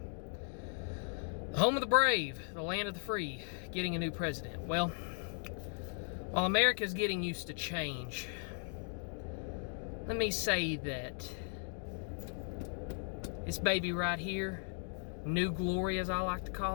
The home of the brave, the land of the free, getting a new president. Well, while America's getting used to change, let me say that this baby right here, New Glory as I like to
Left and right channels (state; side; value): silent; right; 53 dB below the other